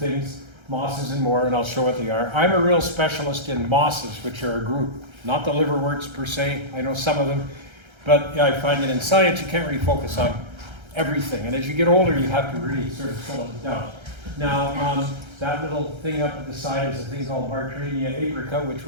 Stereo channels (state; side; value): late; left; 1.3 ms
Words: mosses and more, and I'll show what they are. I'm a real specialist in mosses, which are a group, not the liverworts per se. I know some of them, but I find that in science you can't really focus on everything, and as you get older, you have to really sort of settle it down. Now, that little thing up at the side is a thing called Bartrania aprica, which